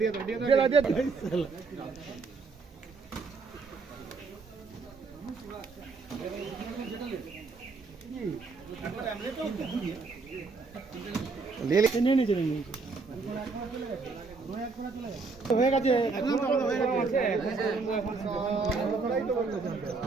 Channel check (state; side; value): quieter; left; 4.2 dB